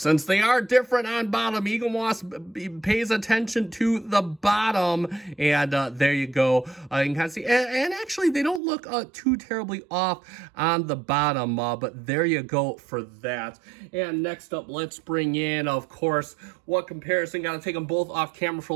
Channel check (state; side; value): drops out; left; at 8.6 s